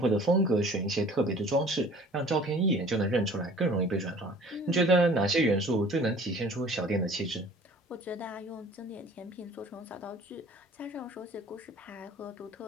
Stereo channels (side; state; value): both; normal; correlation 0.49